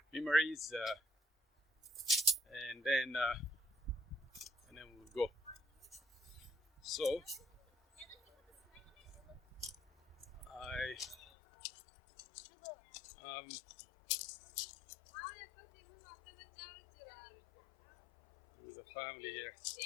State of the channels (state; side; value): drops out; right; at 11.2 s